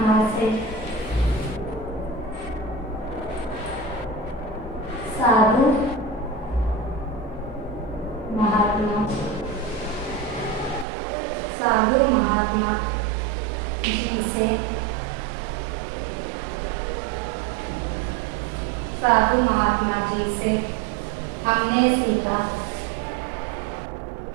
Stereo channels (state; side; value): drops out; left; at 10.9 s